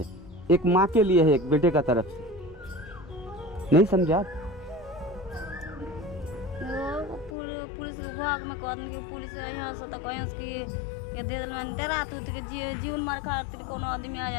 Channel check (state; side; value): drops out; right; at 7.4 s